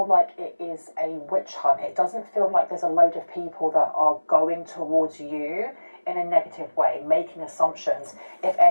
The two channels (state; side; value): inverted; both; correlation -1.00